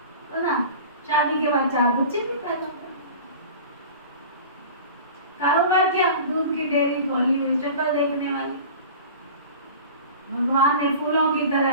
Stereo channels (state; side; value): inverted; both; correlation -0.38